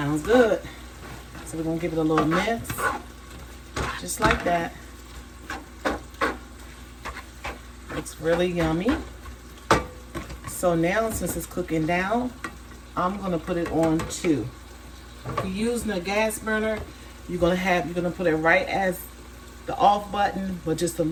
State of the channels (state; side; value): identical; both; correlation 1.00